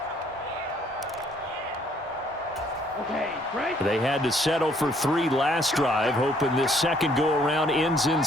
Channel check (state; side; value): normal; both; correlation 0.64